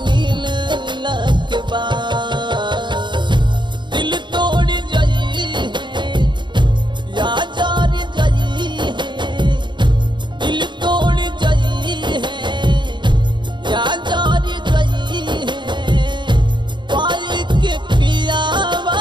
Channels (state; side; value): late; left; 0.22 ms